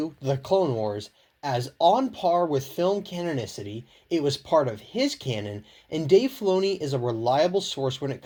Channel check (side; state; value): both; identical; correlation 1.00